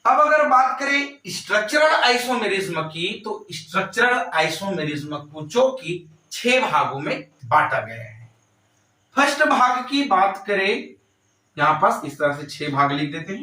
अब अगर बात करें स्ट्रक्चरल आइसोमेरिज्म की, तो स्ट्रक्चरल आइसोमेरिज्म को जो कि 6 भागों में बांटा गया है। फर्स्ट भाग की बात करें, यहां पास इस तरह से 6 भाग लिख देते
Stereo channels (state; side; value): identical; both; correlation 1.00